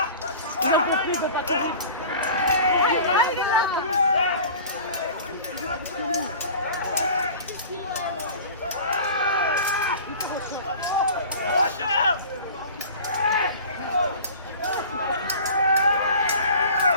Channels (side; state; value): both; inverted; correlation -0.41